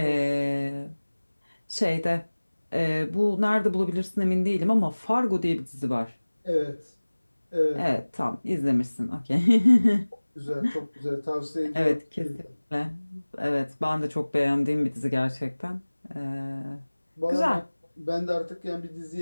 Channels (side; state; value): both; inverted; correlation -1.00